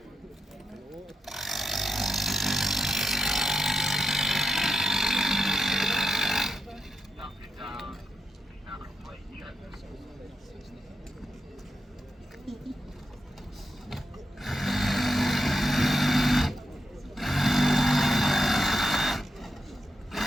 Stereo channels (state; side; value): normal; both; correlation 0.86